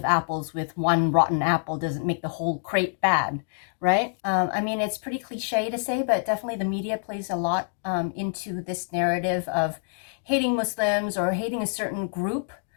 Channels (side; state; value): right; silent; digital silence